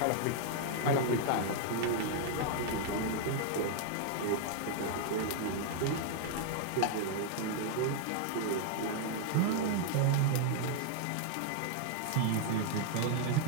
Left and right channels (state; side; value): different; both; correlation 0.00